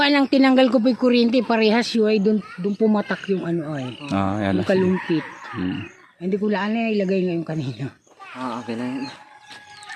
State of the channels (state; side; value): identical; both; correlation 1.00